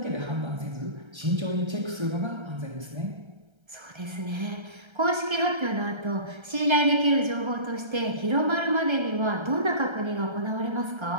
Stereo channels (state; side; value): late; left; 1.3 ms